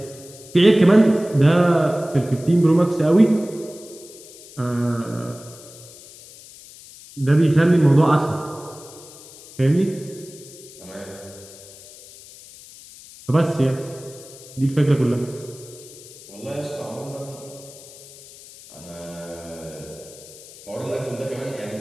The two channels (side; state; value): left; noise; hiss, 19 dB below the sound